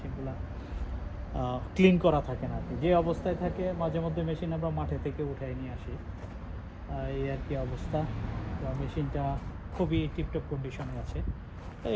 ক্লিন করা থাকে না আর কি। যে অবস্থায় থাকে মাঝে মধ্যে মেশিন আমরা মাঠে থেকে উঠাই নিয়ে আসি, এই আর কি অবস্থা। তো মেশিনটা খুবই টিপটপ কন্ডিশনে আছে।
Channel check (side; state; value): both; identical; correlation 1.00